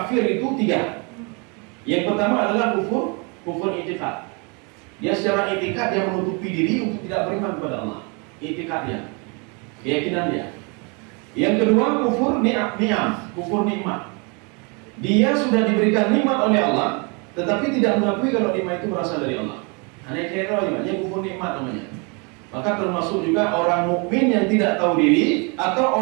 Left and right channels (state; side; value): quieter; left; 32.6 dB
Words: itu 3. Yang pertama adalah kufur i'tiqad. Dia secara i'tiqad dia menutupi diri untuk tidak beriman kepada Allah. I'tiqadnya, keyakinan dia. Yang kedua kufur ni'am, kufur nikmat. Dia sudah diberikan nikmat oleh Allah, tetapi tidak mengakui kalau nikmat itu berasal dari Allah. Hanya kira aja, kufur nikmat namanya. Maka termasuk juga orang mukmin yang tidak tahu diri